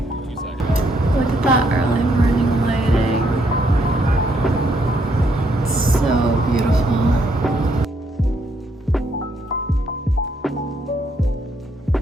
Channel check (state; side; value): normal; both; correlation 0.73